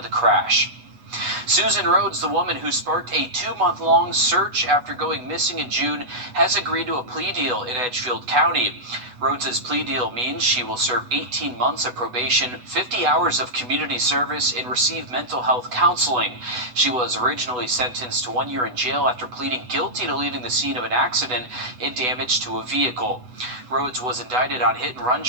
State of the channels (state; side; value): late; left; 8.1 ms